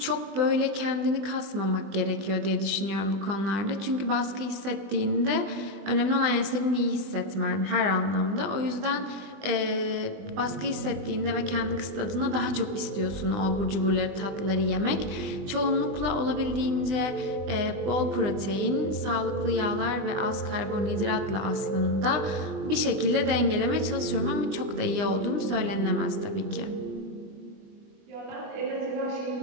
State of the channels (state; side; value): late; left; 20 ms